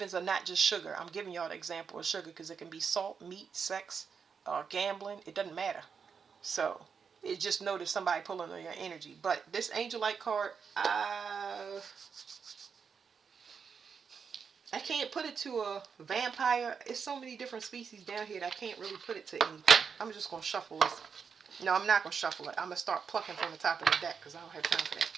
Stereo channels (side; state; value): left; quieter; 6.2 dB